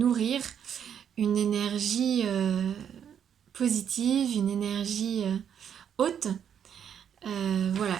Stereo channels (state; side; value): quieter; left; 8.6 dB